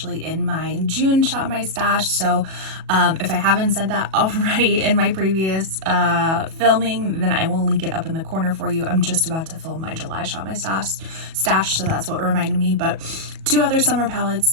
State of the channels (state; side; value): late; left; 37 ms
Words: in my June Shop My Stash. So if I haven't said that already in my previous filming, then I will link it up in the corner for you. I'm just about to film my July Shop My Stash, so that's what reminded me. But two other summer